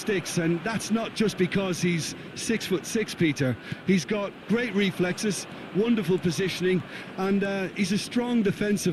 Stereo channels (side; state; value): both; identical; correlation 1.00